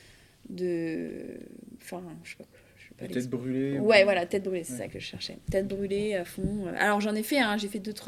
Enfin, je sais pas De tête l'expliquer. brûlée ou... Ouais, voilà, tête brûlée, c'est Ouais. ça que je cherchais. Tête brûlée à fond. Alors j'en ai fait, hein, j'ai fait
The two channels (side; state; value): both; identical; correlation 1.00